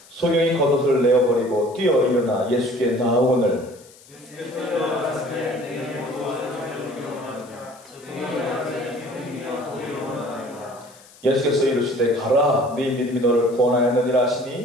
소경이 겉옷을 내어버리고 뛰어 일어나 예수께 나아오거늘 예수께서 일어나시되 내게 무엇을 전해주기 원하느냐 소경이 나가되 주님이여 보기를 원하나이다. 예수께서 이르시되 가라 네 믿음이 너를 구원하였느니라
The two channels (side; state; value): left; noise; hiss, 24 dB below the sound